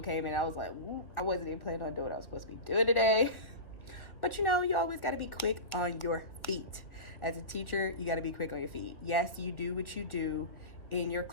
came in. I was like, I wasn't even planning on doing what I was supposed to be doing today. But you know, you always got to be quick on your feet. As a teacher, you got to be quick on your feet. Yes, you do what you do in your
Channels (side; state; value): right; late; 1.7 ms